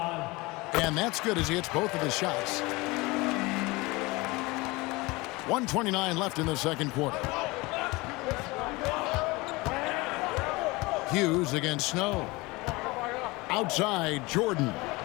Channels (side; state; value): right; quieter; 23.3 dB